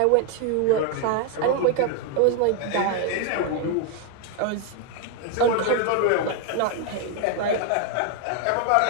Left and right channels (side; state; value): both; different; correlation 0.00